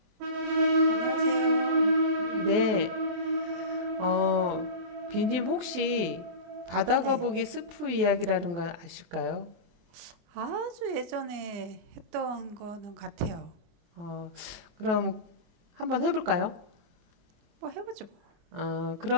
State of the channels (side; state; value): left; late; 23 ms